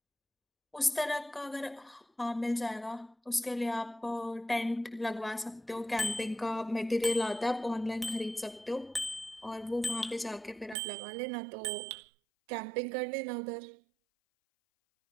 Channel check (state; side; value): drops out; left; at 10.8 s